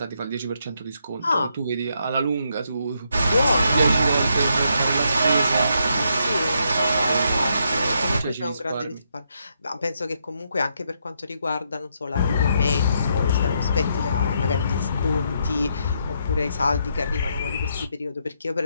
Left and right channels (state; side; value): inverted; both; correlation -0.77